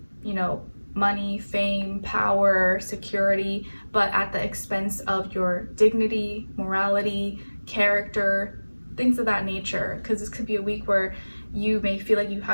money, fame, power, security, but at the expense of your dignity, morality, character, things of that nature. Because this could be a week where you may feel like you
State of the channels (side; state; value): both; inverted; correlation -1.00